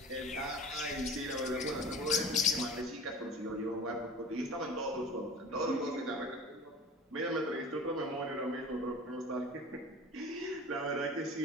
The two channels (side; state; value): both; normal; correlation 0.38